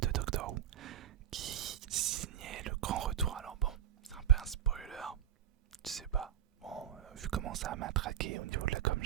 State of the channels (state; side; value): quieter; left; 11.2 dB